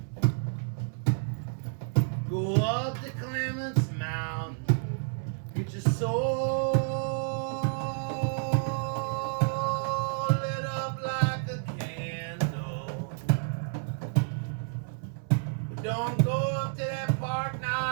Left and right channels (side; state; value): left; silent; 58 dB below the other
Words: Go up to Clements Mound. Get your soul lit up like a candle. But don't go up to that Park